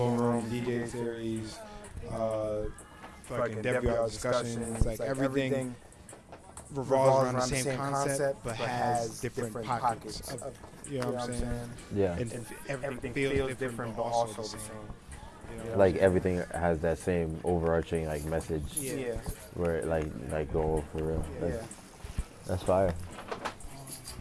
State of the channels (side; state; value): both; identical; correlation 1.00